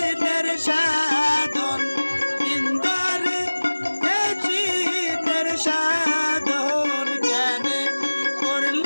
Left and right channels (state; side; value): inverted; both; correlation -1.00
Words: সাধন, দিন তরিয়ে দিনের সাধন কেন